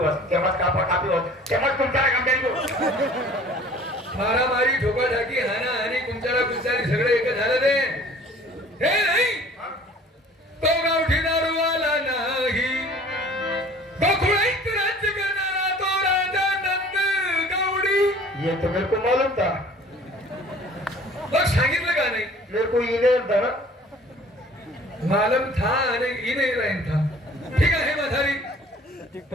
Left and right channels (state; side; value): normal; both; correlation 0.49